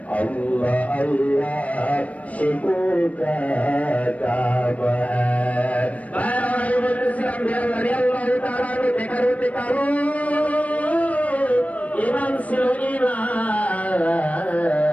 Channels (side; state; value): right; late; 0.068 ms